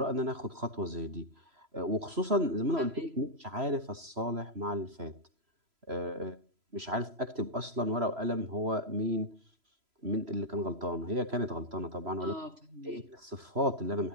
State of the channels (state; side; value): late; left; 3.0 ms